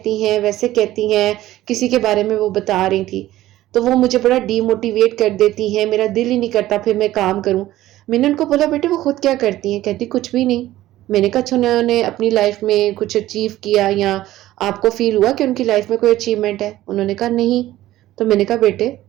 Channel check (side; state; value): left; quieter; 15.1 dB